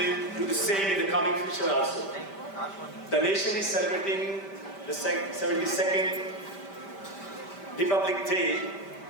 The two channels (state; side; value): late; right; 5.1 ms